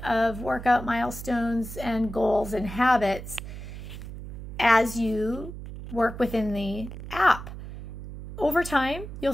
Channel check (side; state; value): right; noise; hum, 11 dB below the sound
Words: workout milestones and goals and habits as you work within the app. Over time, you'll